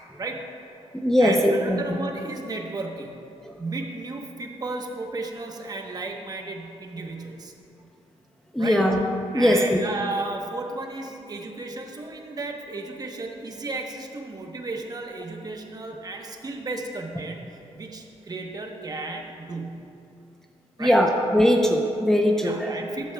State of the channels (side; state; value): both; normal; correlation 0.79